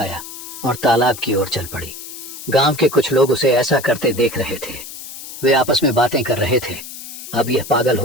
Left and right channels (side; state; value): left; noise; hiss, 12 dB below the sound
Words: और तालाब की ओर चल पड़ी। गांव के कुछ लोग उसे ऐसा करते देख रहे थे। वे आपस में बातें कर रहे थे, अब यह पागल